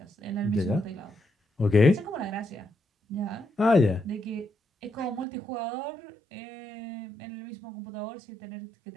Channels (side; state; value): left; drops out; at 5.2 s